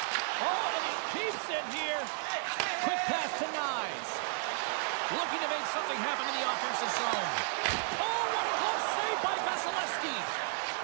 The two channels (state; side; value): silent; left; 56 dB below the other